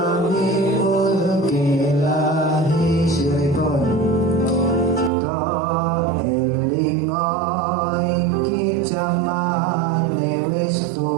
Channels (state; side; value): drops out; left; at 5.1 s